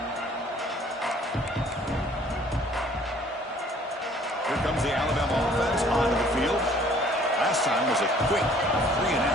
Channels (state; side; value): normal; both; correlation 0.56